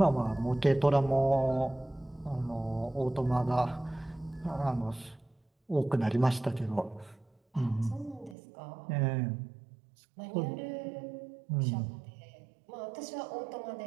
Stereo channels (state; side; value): drops out; left; at 8.3 s